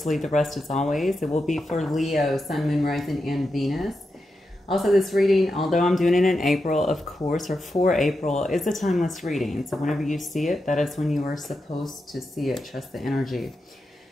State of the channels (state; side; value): normal; both; correlation 0.88